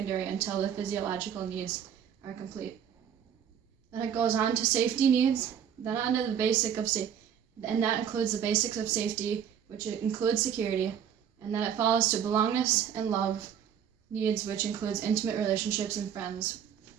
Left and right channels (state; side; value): quieter; left; 8.7 dB